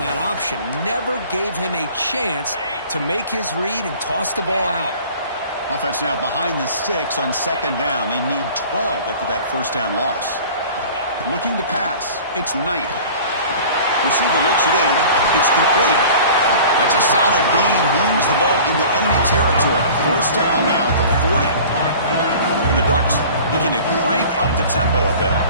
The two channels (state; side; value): inverted; both; correlation -0.44